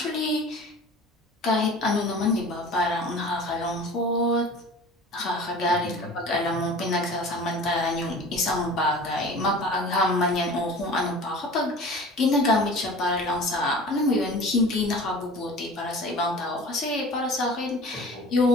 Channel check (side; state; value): both; normal; correlation 0.41